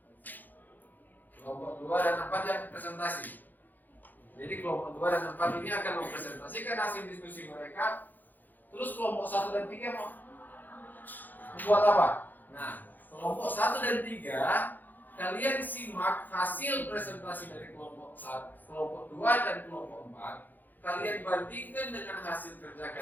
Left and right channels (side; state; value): right; late; 0.086 ms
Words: Kelompok 2 dan 4 yang presentasi. Jadi kelompok 2 dan 4 ini akan mempresentasikan hasil diskusi mereka. Terus kelompok 1 dan 3 mau membuat apa? Nah, kelompok 1 dan 3 kalian simak hasil presentasi dari kelompok 1, kelompok 2 dan kelompok 4. Kalian bandingkan dengan hasil kerja